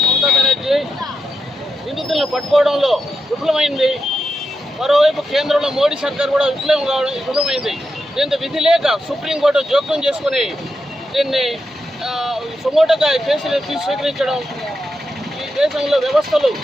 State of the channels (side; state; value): both; normal; correlation 0.86